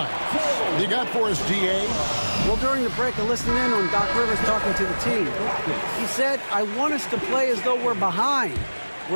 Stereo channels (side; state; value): both; inverted; correlation -1.00